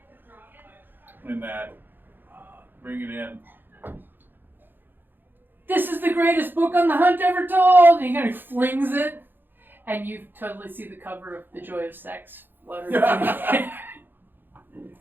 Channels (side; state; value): left; late; 0.095 ms